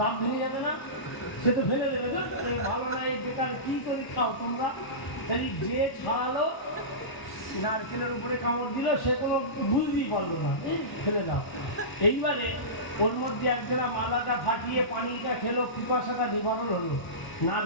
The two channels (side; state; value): right; late; 1.0 ms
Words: ভেঙে যাবে না? সে তো ফেলে দেবে, তো ভালো না, এই বেকার কি করে খাও তোমরা? তাই যে ছাড়ালো, নারকেলের উপরে কামড় দিল, সে কোনো বুঝতেই পারলো না, ফেলে দাও। এইবারে ওর মধ্যে একজনা মালাটা ফাটিয়ে পানিটা খেলো, পিপাসাটা নিবারণ হলো,